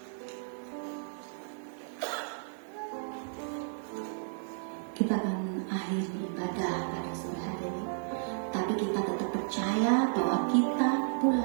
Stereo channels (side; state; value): left; silent; 56 dB below the other